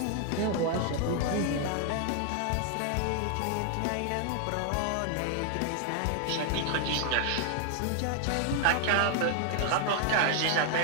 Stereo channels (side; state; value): both; different; correlation 0.00